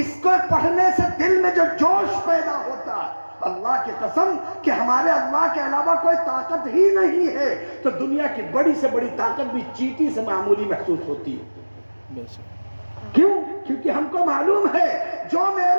کو پڑھنے سے دل میں جو جوش پیدا ہوتا ہے، اللہ کی قسم کہ ہمارے اللہ کے علاوہ کوئی طاقت ہی نہیں ہے، تو دنیا کی بڑی سے بڑی طاقت بھی چیٹی سے معمولی محسوس ہوتی ہے۔ کیوں؟ کیونکہ ہم کو معلوم ہے جو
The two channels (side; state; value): both; inverted; correlation -1.00